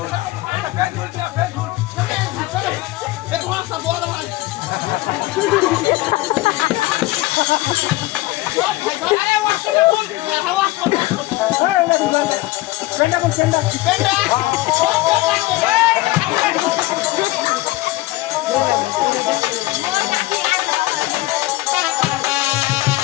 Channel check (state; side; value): quieter; right; 19.1 dB